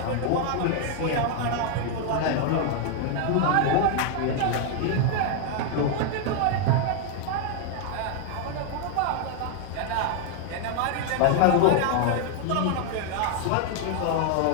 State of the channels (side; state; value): both; different; correlation 0.00